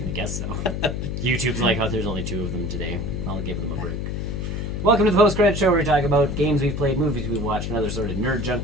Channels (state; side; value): noise; left; hum, 3 dB below the sound